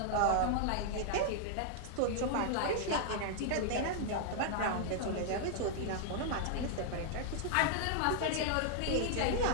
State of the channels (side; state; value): both; different; correlation 0.00